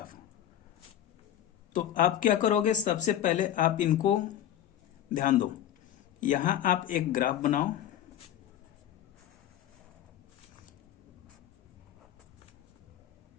तो आप क्या करोगे? सबसे पहले आप इनको ध्यान दो, यहां आप एक ग्राफ बनाओ।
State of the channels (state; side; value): quieter; right; 11.3 dB